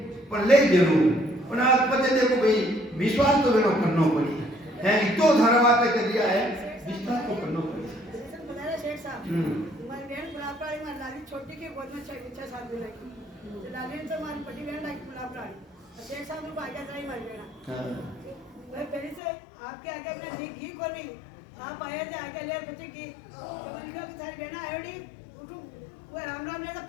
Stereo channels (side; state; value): right; drops out; at 19.2 s